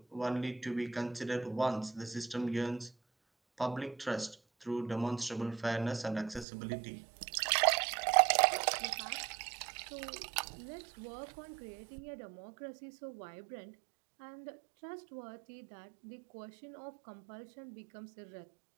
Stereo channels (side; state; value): left; drops out; at 6.5 s